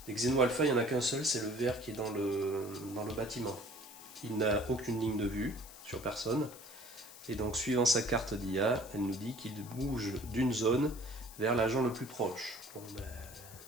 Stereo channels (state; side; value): noise; left; hiss, 17 dB below the sound